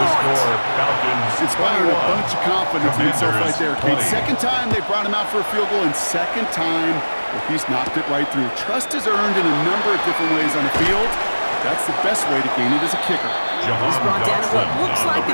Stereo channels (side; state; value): both; inverted; correlation -1.00